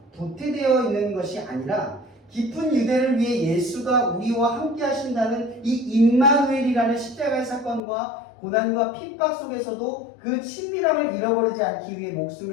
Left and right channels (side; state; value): right; drops out; at 7.8 s